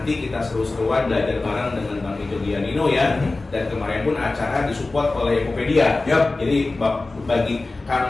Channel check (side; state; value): right; quieter; 3.3 dB